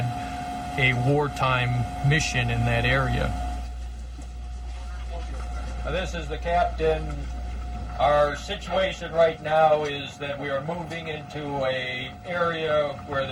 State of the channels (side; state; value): both; identical; correlation 1.00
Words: a wartime mission in that area. This is the captain. Our situation right now is that we are moving into an area where